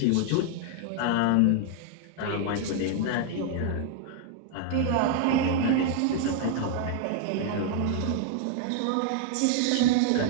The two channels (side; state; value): both; different; correlation 0.00